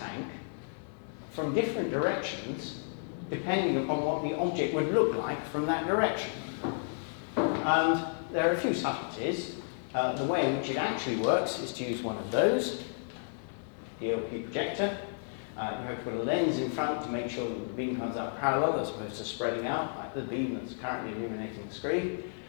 from different directions, depending upon what the object would look like from that direction. And there are a few subtleties. The way in which it actually works is to use one of those, the LP projector. You have to put a lens in front to make sure that the beam comes out parallel as opposed to spreading out, like the beam that's currently illuminating the screen.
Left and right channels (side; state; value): right; silent; 56 dB below the other